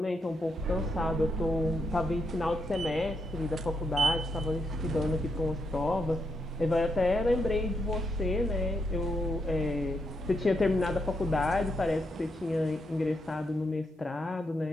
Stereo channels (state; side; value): normal; both; correlation 0.81